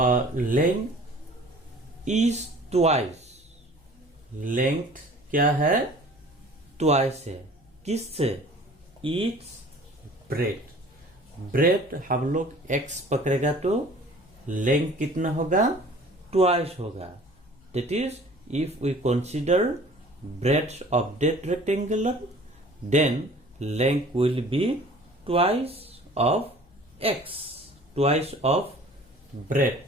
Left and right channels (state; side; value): noise; left; hum, 29 dB below the sound